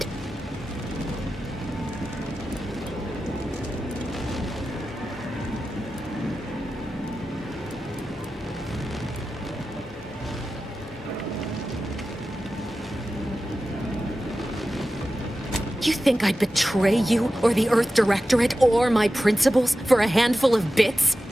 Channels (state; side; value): normal; both; correlation 0.93